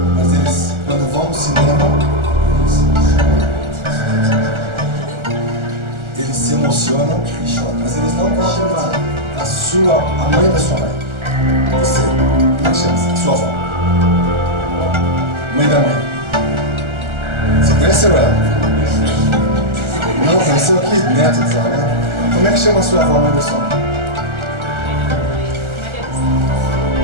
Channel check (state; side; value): late; left; 1.4 ms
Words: mas eles, quando vão no cinema, eles se emocionam e choram. Mas eles não vão admitir. A mãe da sua mãe. Você, como é que chama? Sua avó. Mãe da mãe. Você conheceu ela? Não, conheceu aqui? Neto dela, né? Como é que chama a sua avó, mãe da sua mãe?